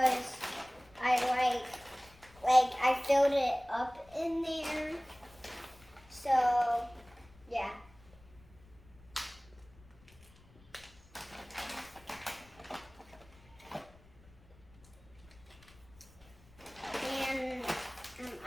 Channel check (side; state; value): left; noise; rumble, 25 dB below the sound